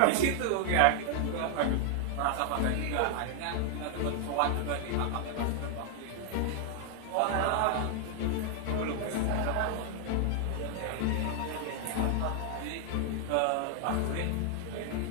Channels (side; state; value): both; different; correlation 0.00